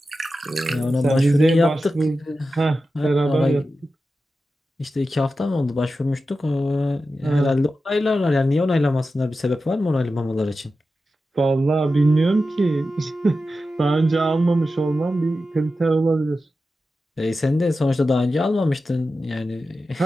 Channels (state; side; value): normal; both; correlation 0.92